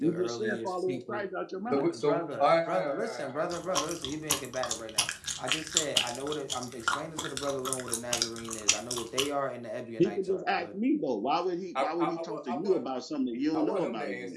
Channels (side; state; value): both; identical; correlation 1.00